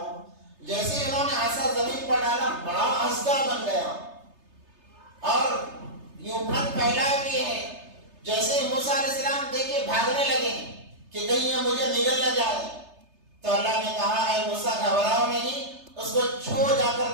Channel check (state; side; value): late; left; 3.3 ms